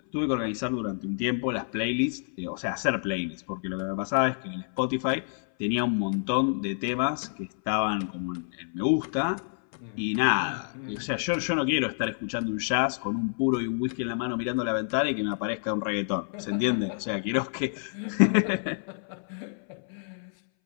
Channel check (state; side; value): silent; right; 59 dB below the other